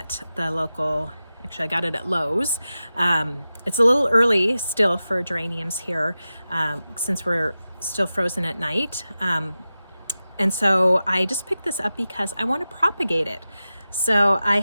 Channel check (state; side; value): inverted; both; correlation -0.94